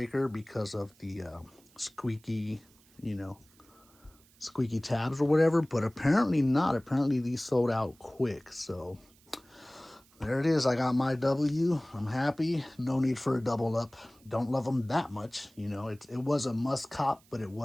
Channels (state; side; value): noise; right; hiss, 29 dB below the sound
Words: because of the squeaky, you know, squeaky tabs or whatever, but apparently not. Apparently these sold out quick. So there it is. I got my W. I'm happy. No need for a double up. Don't love them that much. You know, it was a must cop, but it